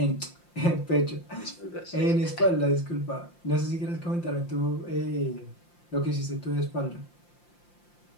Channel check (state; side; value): late; right; 5.8 ms